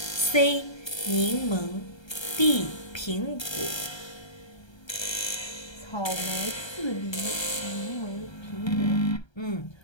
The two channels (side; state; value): right; late; 1.3 ms